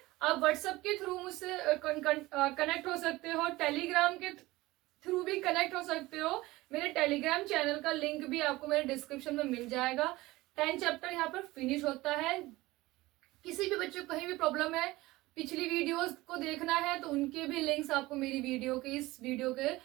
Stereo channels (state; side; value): quieter; left; 19.4 dB